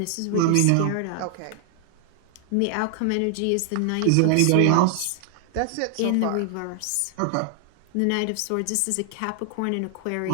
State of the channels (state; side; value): different; both; correlation 0.00